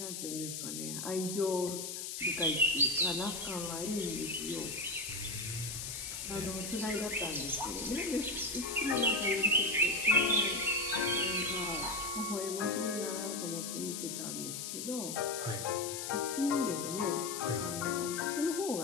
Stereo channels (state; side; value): noise; left; hiss, 5 dB below the sound